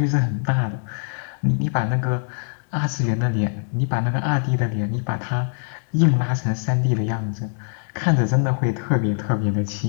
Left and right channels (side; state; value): right; silent; digital silence